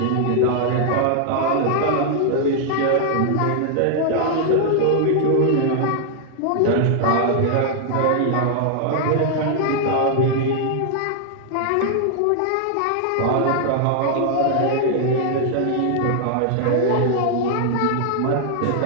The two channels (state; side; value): different; both; correlation 0.00